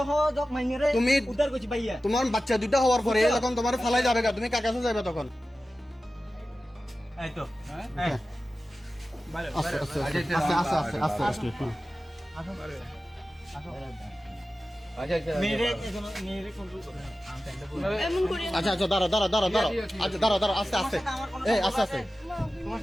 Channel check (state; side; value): normal; both; correlation 0.95